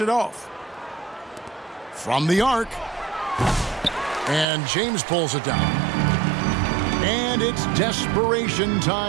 it off. From the arc. And James pulls it down. And it's desperation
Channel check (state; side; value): drops out; left; at 4.5 s